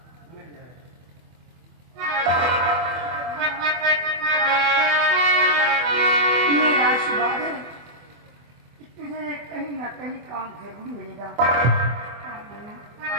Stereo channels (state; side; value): late; left; 24 ms